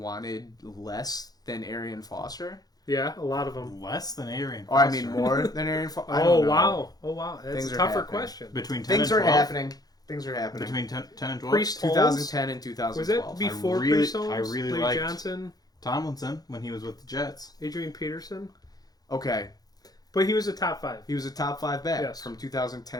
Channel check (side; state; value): right; late; 0.19 ms